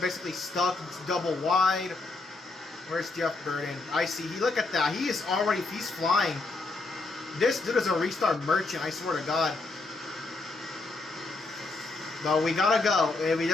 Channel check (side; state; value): right; quieter; 3.4 dB